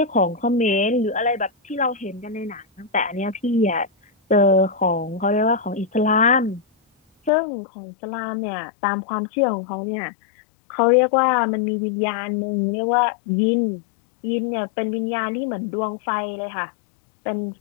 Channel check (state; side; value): drops out; right; at 7.3 s